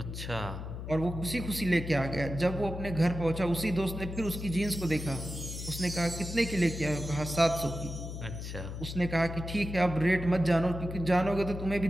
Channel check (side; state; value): left; noise; hum, 7 dB below the sound